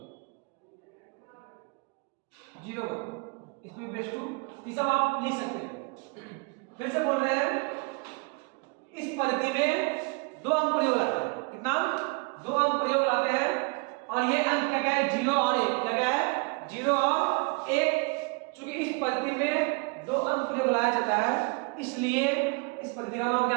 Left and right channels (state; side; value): quieter; left; 31.4 dB